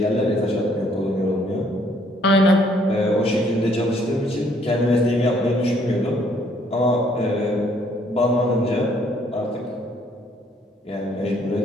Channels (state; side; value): normal; both; correlation 0.65